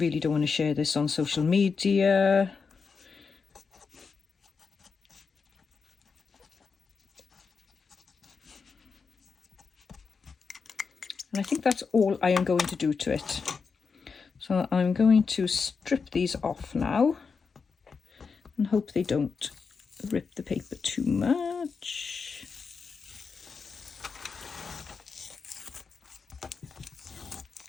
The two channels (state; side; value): quieter; right; 5.3 dB